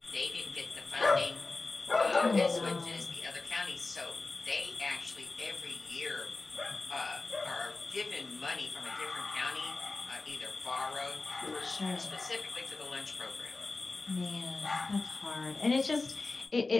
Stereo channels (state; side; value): quieter; right; 3.5 dB